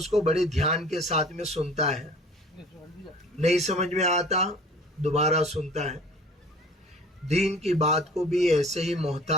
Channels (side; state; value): both; normal; correlation 0.47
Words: کو بڑے دھیان کے ساتھ میں سنتا ہے. نہیں سمجھ میں آتا دوبارہ سنتا ہے. دین کی بات کو بھی ایسے ہی